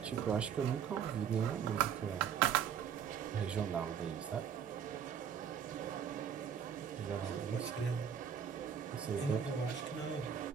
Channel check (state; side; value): quieter; left; 8.0 dB